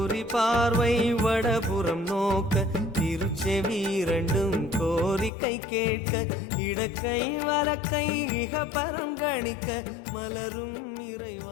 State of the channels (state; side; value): drops out; right; at 5.3 s